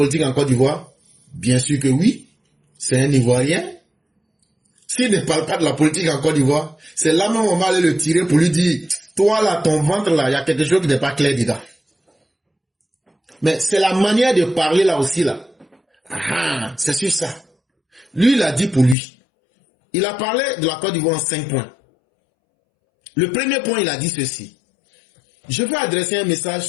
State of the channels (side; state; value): right; drops out; at 18.9 s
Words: en Côte d'Ivoire? Bien sûr que oui. C'est un Ivoirien. S'il ne parle pas de la politique en Côte d'Ivoire, c'est là même on va aller le tirer pour lui dire, toi là, ton ventre là, il y a quelque chose qui n'est pas clair dedans. Mais c'est la manière de parler là aussi là. Ah, c'est sur ça. Lui, il a dit pour lui. Il a parlé de la Côte d'Ivoire en 5 points. Le premier point, il a dit ceci. Je veux adresser un message